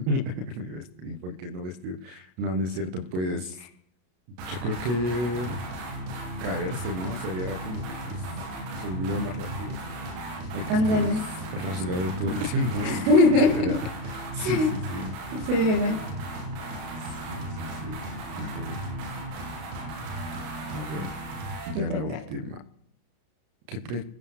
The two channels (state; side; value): late; left; 33 ms